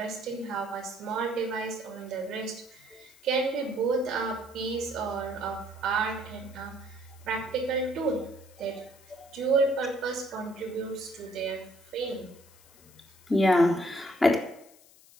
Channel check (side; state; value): left; noise; hiss, 25 dB below the sound